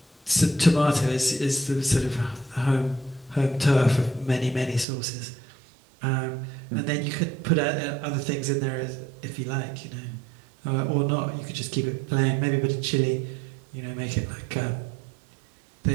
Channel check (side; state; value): left; drops out; at 4.9 s